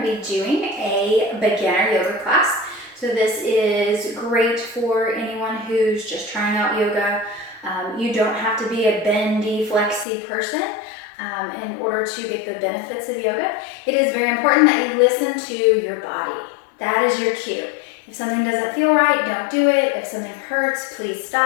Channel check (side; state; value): right; drops out; at 10.1 s